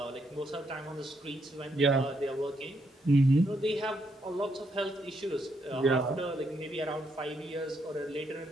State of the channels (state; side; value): normal; both; correlation 0.77